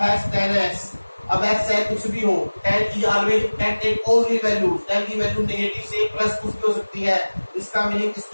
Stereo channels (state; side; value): inverted; both; correlation -1.00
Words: 10x। अब x चाहे कुछ भी हो, 10 की always 10 take all real value, 10 की वैल्यू नेगेटिव से प्लस कुछ भी हो सकती है। इसका मीनिंग